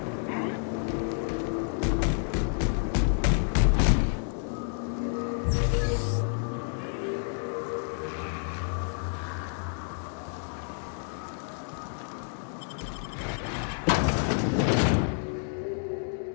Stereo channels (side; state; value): right; silent; 58 dB below the other